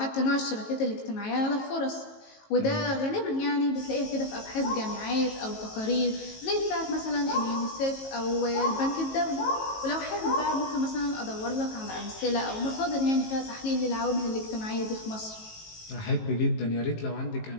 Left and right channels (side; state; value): right; late; 18 ms